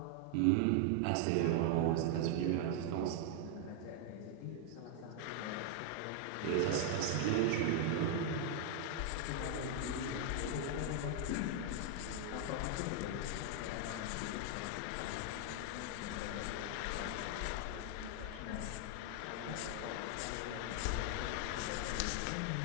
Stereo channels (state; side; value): different; both; correlation 0.00